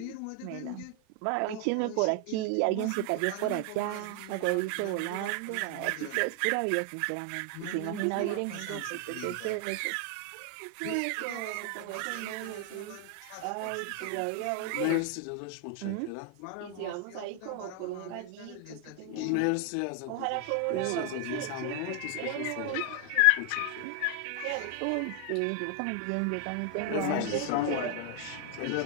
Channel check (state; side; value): different; both; correlation 0.00